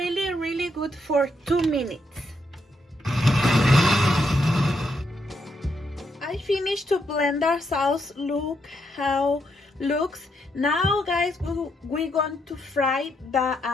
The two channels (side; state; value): both; normal; correlation 0.78